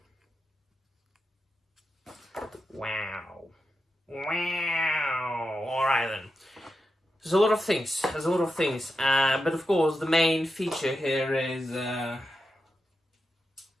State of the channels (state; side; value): normal; both; correlation 0.89